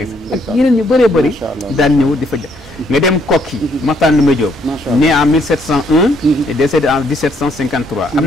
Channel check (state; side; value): normal; both; correlation 0.69